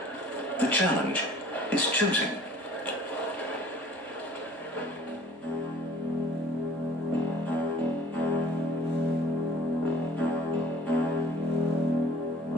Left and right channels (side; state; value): both; normal; correlation 0.51